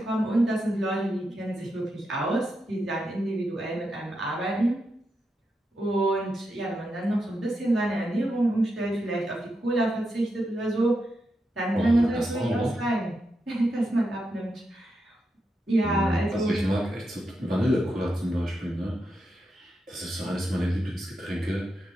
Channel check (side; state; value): both; normal; correlation 0.85